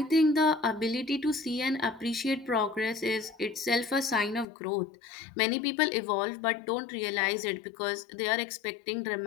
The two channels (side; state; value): right; drops out; at 4.5 s